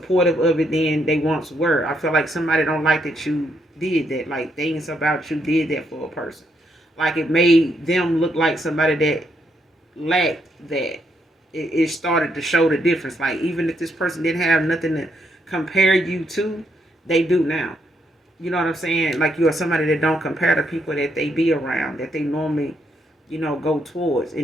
of it than they once were. I feel like somebody don't like that you did that, like things about you did that for a person. Like it made them look like somebody that lacked that. It started to show the difference. Like even if this person didn't have nothing to compare you to, they do now. You know what I'm saying? Like you are somebody that don't compare to people that they be around, that they normally, you know, go towards.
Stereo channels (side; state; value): both; normal; correlation 0.76